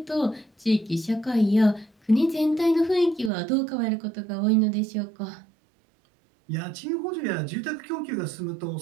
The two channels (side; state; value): left; drops out; at 3.3 s